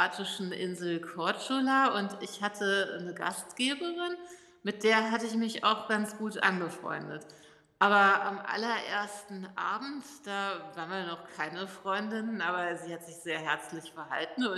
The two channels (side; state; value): both; identical; correlation 1.00